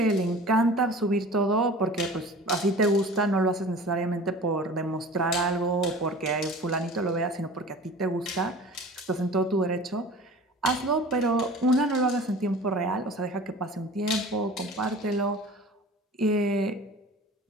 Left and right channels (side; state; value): both; normal; correlation 0.40